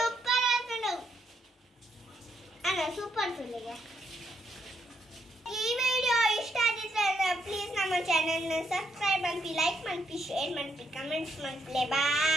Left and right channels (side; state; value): both; normal; correlation 0.77